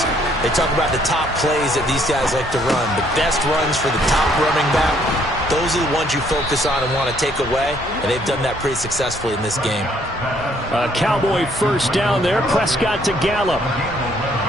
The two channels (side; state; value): both; normal; correlation 0.66